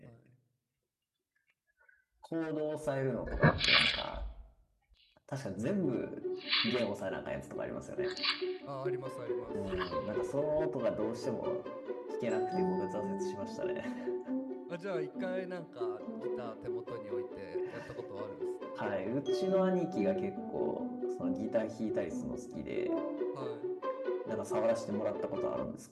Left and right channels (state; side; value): identical; both; correlation 1.00